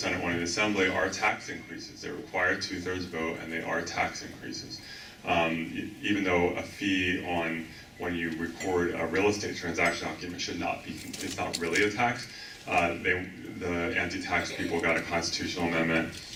one in the Assembly, are tax increases. They require 2/3 vote, and they are tax increases. Even though a fee on when you record a real estate transaction document should not be, it's not really a tax. The anti-tax people got a constitutional amendment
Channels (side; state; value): both; identical; correlation 1.00